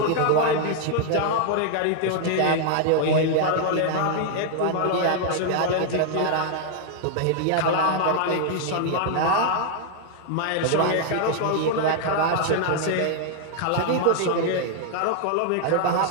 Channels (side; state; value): both; different; correlation 0.00